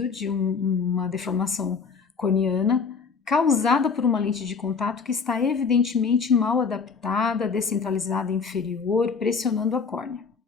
de uma deformação corneana causada por uma lente de contato que está evidentemente mal adaptada, descentralizada inferior, pressionando a córnea.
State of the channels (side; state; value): right; quieter; 5.4 dB